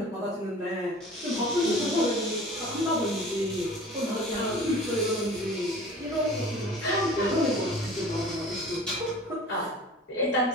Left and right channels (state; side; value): normal; both; correlation 0.43